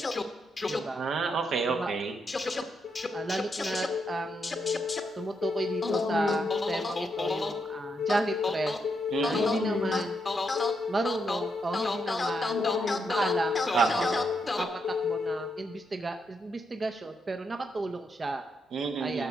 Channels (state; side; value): normal; both; correlation 0.80